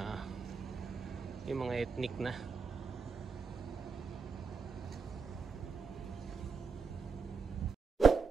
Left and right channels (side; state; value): left; quieter; 5.4 dB